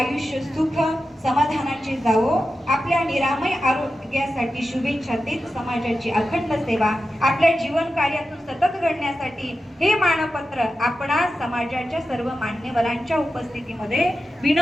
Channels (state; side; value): normal; both; correlation 0.92